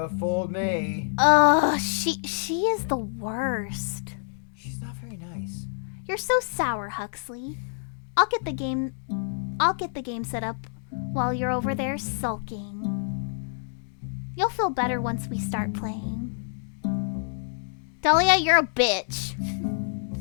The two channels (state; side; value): silent; right; digital silence